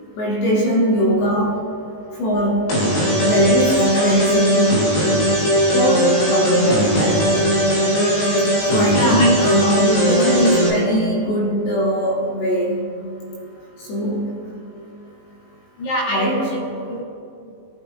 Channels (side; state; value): right; late; 19 ms